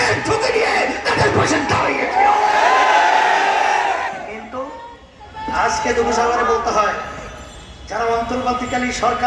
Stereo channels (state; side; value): identical; both; correlation 1.00